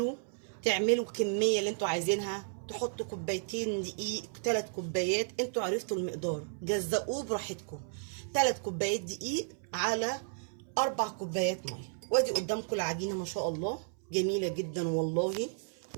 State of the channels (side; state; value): left; silent; 56 dB below the other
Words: تعملوا الكميه اللي انتوا عايزينها، تحطوا كوبايتين دقيق 3 كوبايات، انتوا عرفتوا المقدار، جزقوه براحتكم. 3 كوبايات دقيق على 4 كوبايات ميه. وادي قدامكم العجينه ما شاء الله جميله جدا والله،